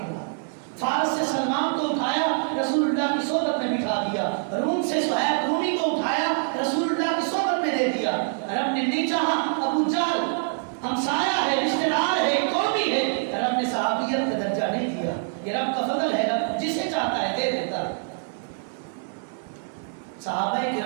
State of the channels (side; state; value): left; silent; 59 dB below the other